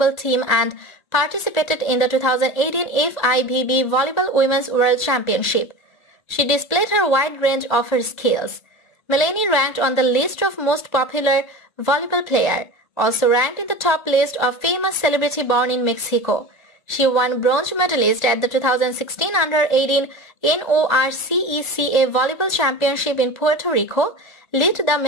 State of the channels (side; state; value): right; late; 1.8 ms